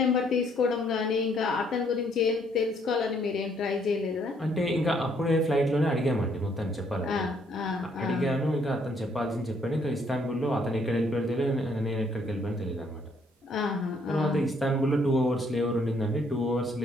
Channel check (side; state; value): both; normal; correlation 0.67